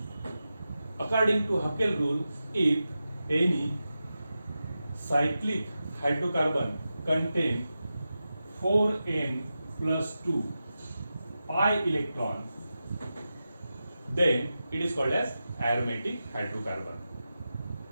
According to Haeckel rule, if any cyclic hydrocarbon contain 4n plus 2 pi electron, then it is called as aromatic hydrocarbon.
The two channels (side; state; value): both; inverted; correlation -0.92